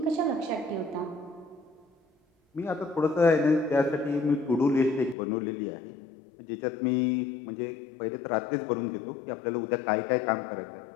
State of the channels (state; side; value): drops out; right; at 5.2 s